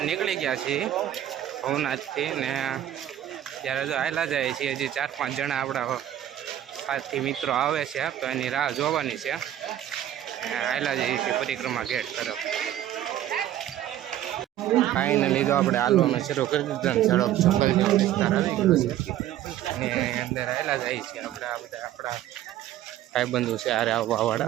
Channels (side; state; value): left; quieter; 12.1 dB